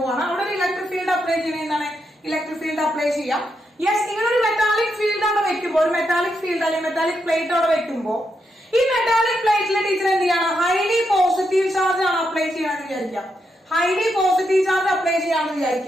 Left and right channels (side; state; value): both; normal; correlation 0.82